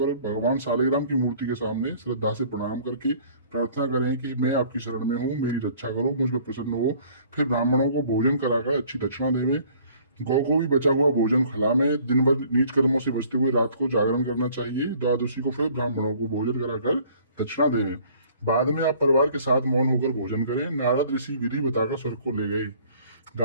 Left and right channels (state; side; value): inverted; both; correlation -0.55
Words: भगवान सालिग्राम की मूर्ति के सामने श्रद्धा से प्रणाम करके प्रार्थना करें कि मैं आपकी शरण में हूँ, मेरी रक्षा करो, मुझ पर प्रसन्न हो। फिर ब्राह्मणों को भोजन कराकर अच्छी दक्षिणा देवें। गौ को भी बचा हुआ भोजन खिलावें। दिन भर नीच कर्मों से बचते हुए रात को जागरण करना चाहिए। द्वादशी को फिर ब्राह्मणों को भोजन कराकर दक्षिणा देवें। बाद में आप परिवार के साथ मौन होकर भोजन करें। नारद ऋषि विधि बताकर स्वर्ग को ले गए।